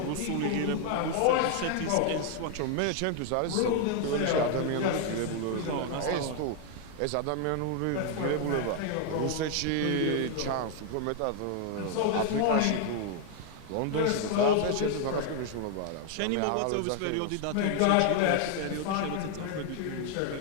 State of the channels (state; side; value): different; both; correlation 0.00